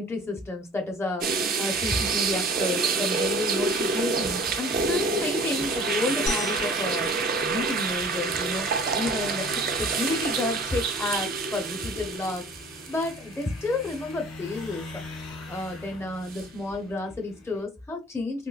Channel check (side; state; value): both; normal; correlation 0.48